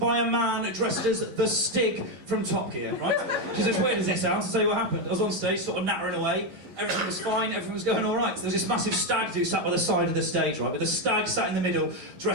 a man dressed as the Stig from Top Gear, right? Which is as weird as it sounds. I'll tell you what happened. I was on stage, sort of nattering away. Everything was fine, everything was going all right. There was this massive stag do sat by the side of the stage, right? With the stag sat in the middle,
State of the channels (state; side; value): late; left; 11 ms